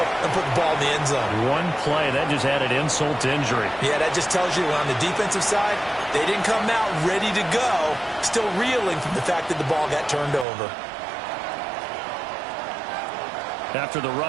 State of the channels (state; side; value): drops out; left; at 10.5 s